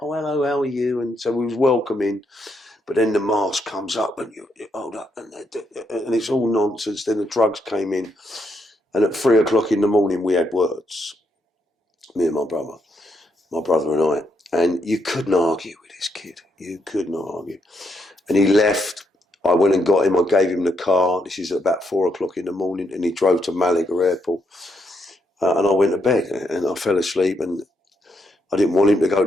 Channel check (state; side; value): normal; both; correlation 0.78